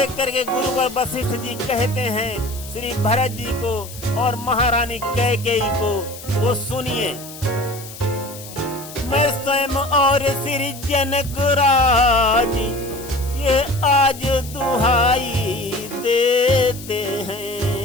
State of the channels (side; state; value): left; noise; hiss, 15 dB below the sound